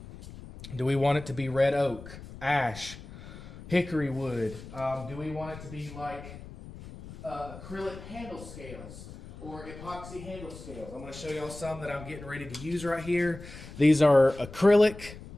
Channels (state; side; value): noise; left; rumble, 14 dB below the sound